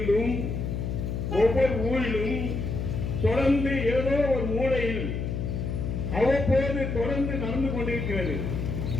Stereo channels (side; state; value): left; noise; hum, 3 dB below the sound